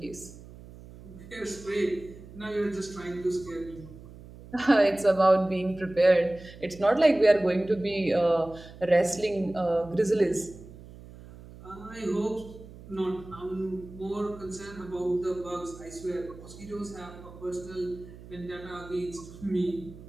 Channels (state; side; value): noise; right; hum, 17 dB below the sound